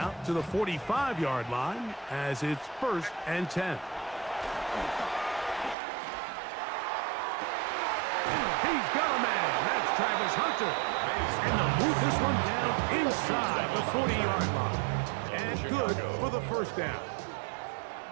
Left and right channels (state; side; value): drops out; left; at 5.8 s